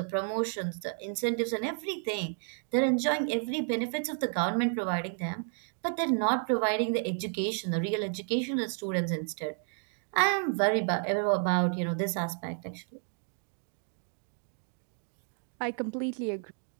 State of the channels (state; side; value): silent; left; 57 dB below the other